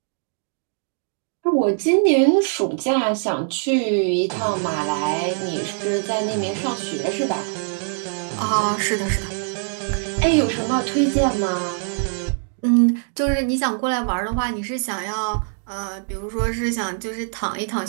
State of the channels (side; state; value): left; silent; digital silence